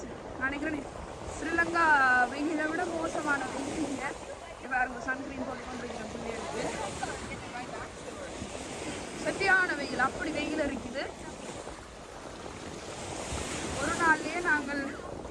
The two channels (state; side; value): identical; both; correlation 1.00